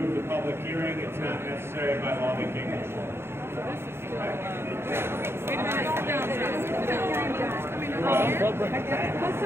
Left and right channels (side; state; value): left; late; 0.12 ms